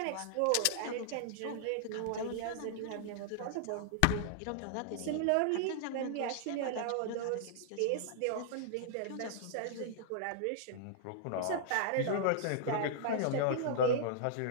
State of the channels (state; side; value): different; both; correlation -0.01